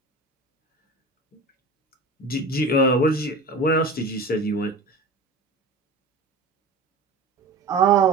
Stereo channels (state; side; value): quieter; left; 3.0 dB